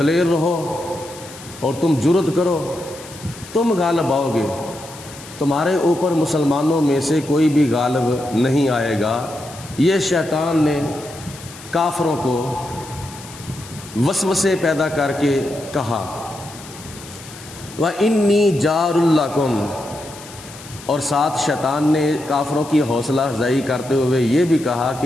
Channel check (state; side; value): noise; left; hiss, 17 dB below the sound